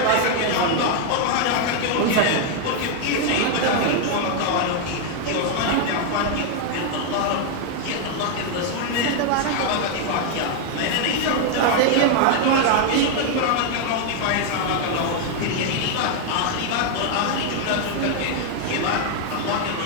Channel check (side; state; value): both; different; correlation 0.00